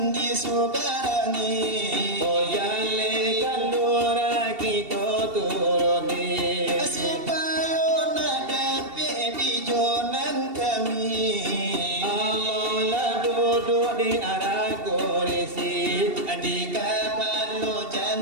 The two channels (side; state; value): left; late; 2.7 ms